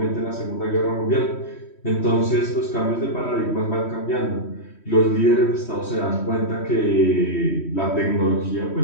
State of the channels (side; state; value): right; late; 3.1 ms